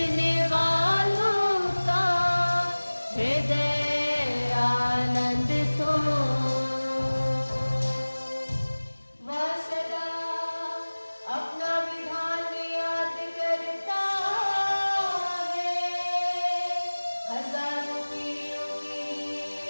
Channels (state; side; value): inverted; both; correlation -1.00